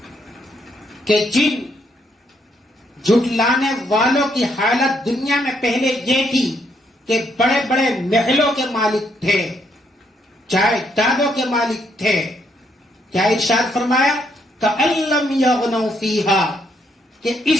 کہ جن جھٹلانے والوں کی حالت دنیا میں پہلے یہ تھی کہ بڑے بڑے محلوں کے مالک تھے، جائیدادوں کے مالک تھے. کیا ارشاد فرمایا؟ کأن لم یغنوا فیہا، کہ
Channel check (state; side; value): normal; both; correlation 0.73